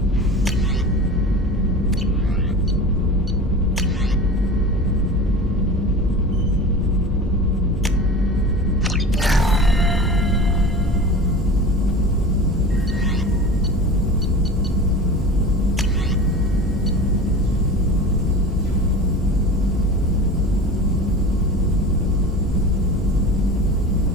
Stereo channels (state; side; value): normal; both; correlation 0.34